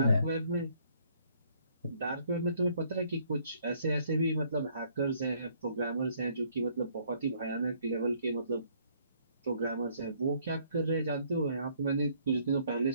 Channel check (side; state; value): both; inverted; correlation -0.65